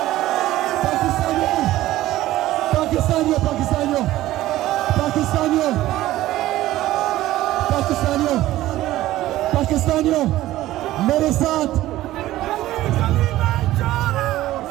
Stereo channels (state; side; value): quieter; left; 15.4 dB